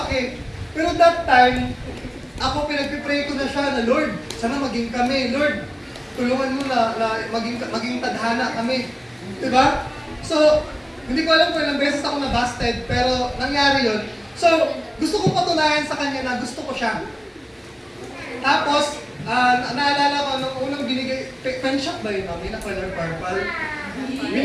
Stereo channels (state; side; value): identical; both; correlation 1.00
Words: paki. Pero that time, ako pinagpipray ko na siya na, Lord, sana maging kami. Lord, tulungan mo na maging tadhana kami. Di ba? So, hindi ko alam kung ilang beses ako na-busted, pero nangyari yun. So, gusto kong patunayan sa kanya na gusto ko siya. Tapos, naalala ko, nung unang binigay, pen shop ba yun, mami, na color purple?